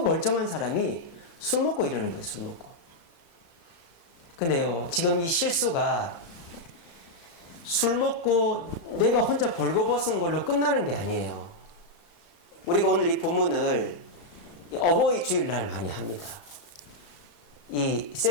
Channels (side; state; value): right; late; 35 ms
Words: 사람이 술 먹고 이러는 거예요. 술 먹고. 근데요, 지금 이 실수가 술 먹고 내가 혼자 벌거벗은 걸로 끝나는 게 아니에요. 우리가 오늘 이 본문을 어버이 주일날 많이 합니다. 이